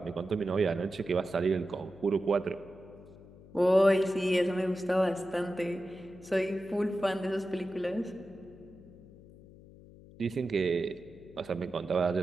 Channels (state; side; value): noise; left; hum, 21 dB below the sound